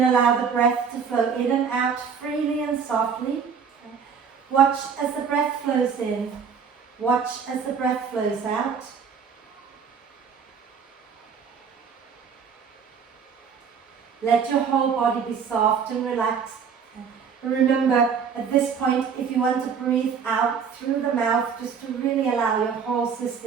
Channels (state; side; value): quieter; left; 6.5 dB